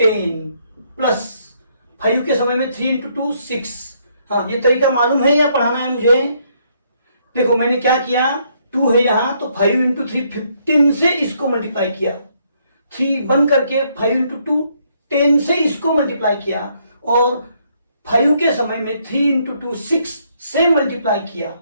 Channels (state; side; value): inverted; both; correlation -0.71